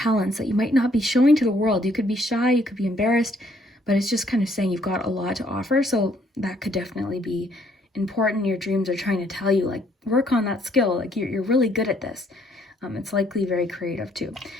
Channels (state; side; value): normal; both; correlation 0.66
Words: that you might not be showing to the world. You could be shy, you could be embarrassed, but it's just kind of saying you've got a lot to offer. So that could definitely be important. Your dreams are trying to tell you, like, work on that skill. Like you're really good at this. It's likely very creative too.